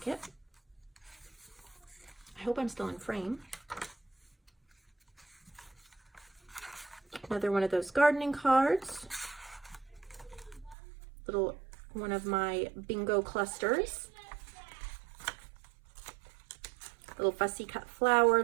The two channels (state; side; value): drops out; left; at 10.8 s